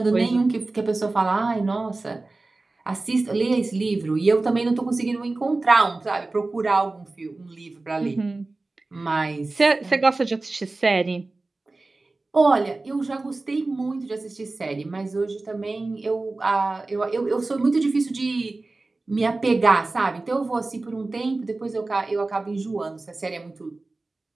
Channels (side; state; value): left; quieter; 3.3 dB